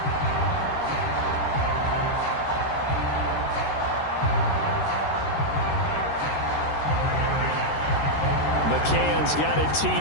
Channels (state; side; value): late; right; 13 ms